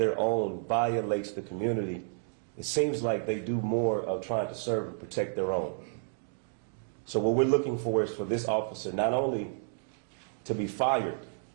own violates the community, it seems like they do more of trying to serve and protect their own. So what we're looking for is for this officer not only to be fired,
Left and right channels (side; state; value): left; silent; digital silence